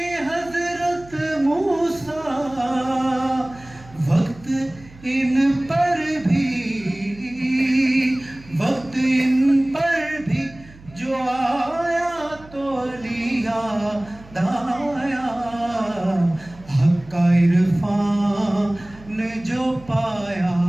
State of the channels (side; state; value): right; noise; hum, 22 dB below the sound